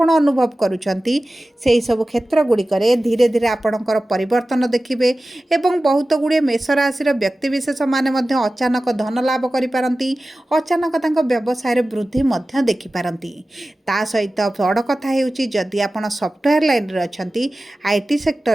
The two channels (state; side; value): normal; both; correlation 0.96